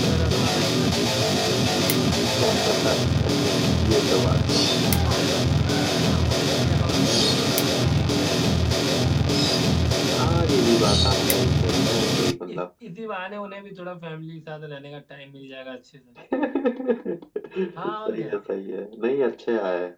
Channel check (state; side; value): identical; both; correlation 1.00